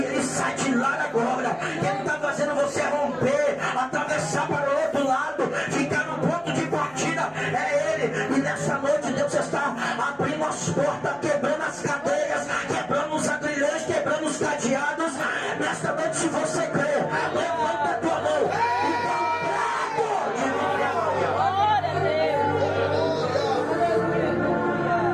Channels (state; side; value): noise; right; hum, 28 dB below the sound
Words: ele sai de lá agora. Quem está fazendo você romper, atravessar para o outro lado, ficar no ponto de partida, é ele. E nessa noite Deus está abrindo as portas, quebrando as cadeias, quebrando os agrilhões, quebrando os cadeados. Nesta noite, se você crê, levanta a tua mão e dá um brado de vitória. Glória a Deus.